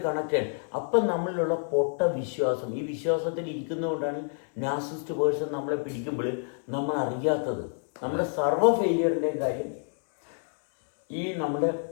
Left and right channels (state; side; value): silent; right; 59 dB below the other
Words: കണക്ട് ചെയ്യാൻ. അപ്പം നമ്മളിലുള്ള പൊട്ട വിശ്വാസം, ഈ വിശ്വാസത്തിൽ ഇരിക്കുന്നതുകൊണ്ടാണ് നാർസിസ്റ്റ് പേഴ്സൺ നമ്മളെ പിടിക്കുമ്പോൾ നമ്മൾ അറിയാത്തത്. നമ്മുടെ സർവ്വ ഫെയിലിയറിൻ്റെയും കാര്യം ഈ നമ്മുടെ